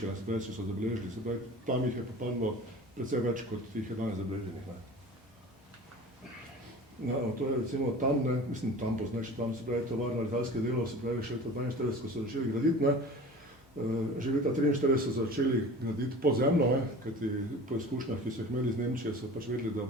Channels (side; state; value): both; normal; correlation 0.39